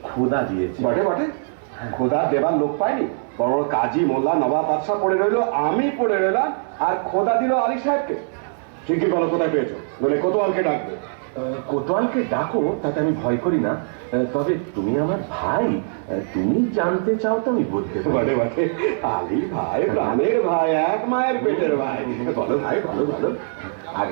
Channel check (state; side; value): silent; left; digital silence